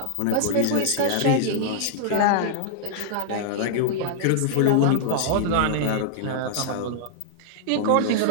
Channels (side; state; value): both; different; correlation -0.01